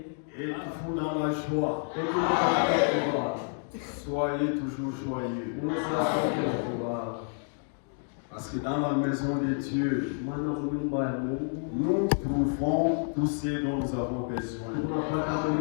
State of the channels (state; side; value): silent; right; 58 dB below the other